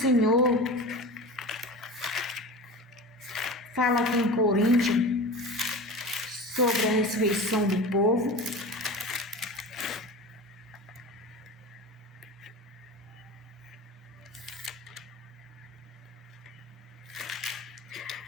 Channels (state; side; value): normal; both; correlation 0.31